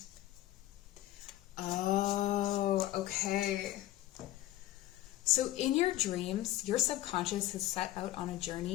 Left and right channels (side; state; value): right; quieter; 15.2 dB